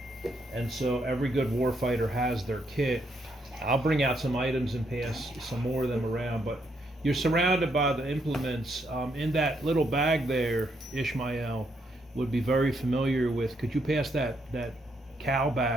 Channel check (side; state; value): both; normal; correlation 0.76